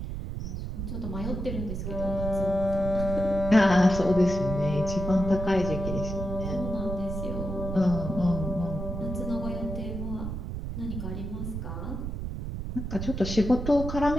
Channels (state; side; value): noise; right; rumble, 5 dB below the sound